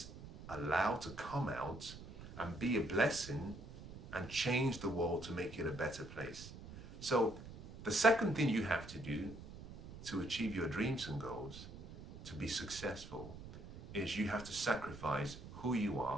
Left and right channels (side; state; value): right; noise; rumble, 13 dB below the sound